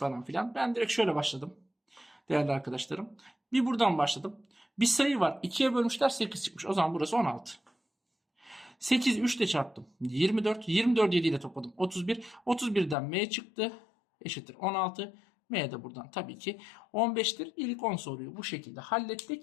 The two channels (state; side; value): drops out; right; at 13.0 s